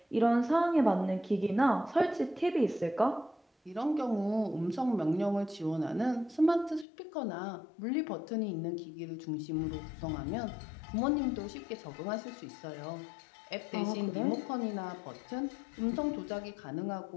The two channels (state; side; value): drops out; right; at 6.9 s